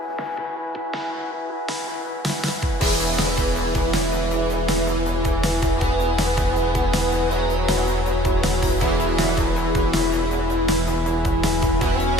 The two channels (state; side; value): normal; both; correlation 0.56